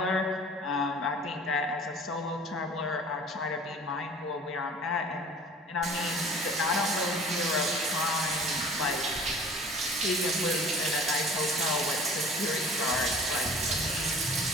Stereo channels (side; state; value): both; normal; correlation 0.45